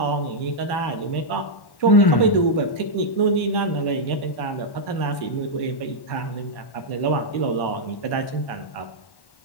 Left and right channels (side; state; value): right; late; 1.1 ms